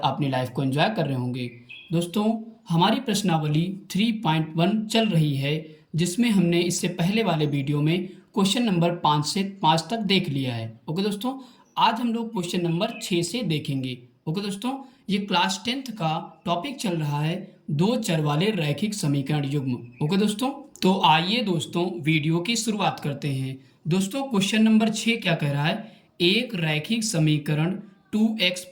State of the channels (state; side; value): identical; both; correlation 1.00